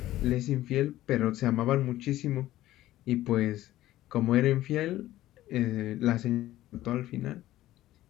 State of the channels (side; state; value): right; quieter; 14.9 dB